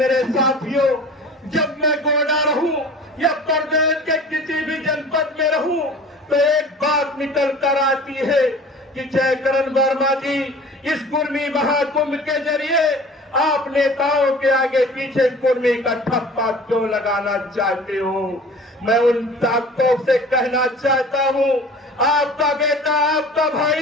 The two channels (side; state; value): both; normal; correlation 0.43